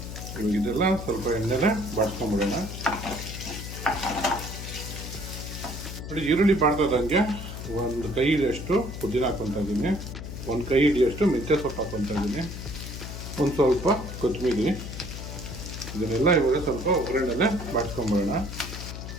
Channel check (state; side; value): noise; left; hum, 9 dB below the sound